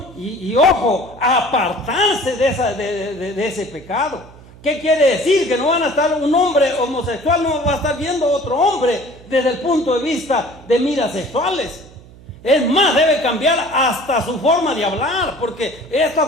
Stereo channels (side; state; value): right; noise; hum, 22 dB below the sound